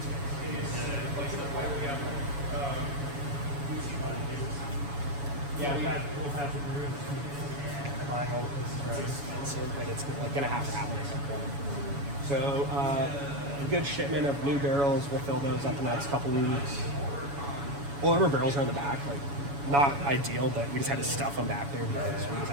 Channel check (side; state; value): left; late; 7.1 ms